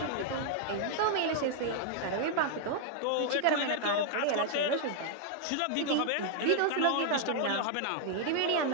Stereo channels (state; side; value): different; both; correlation 0.00